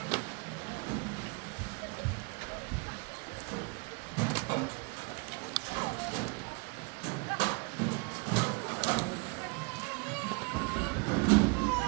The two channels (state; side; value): quieter; left; 30.4 dB